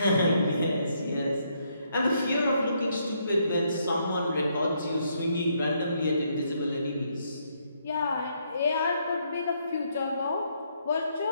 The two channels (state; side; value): inverted; both; correlation -0.74